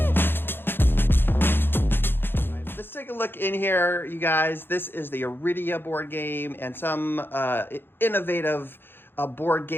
Let's take a look in here, you guys. This is the Arydia board game and some innovative board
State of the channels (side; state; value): right; late; 0.10 ms